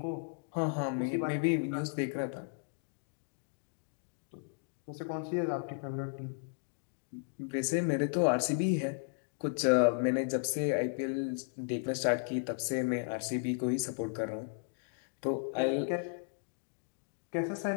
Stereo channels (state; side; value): silent; right; digital silence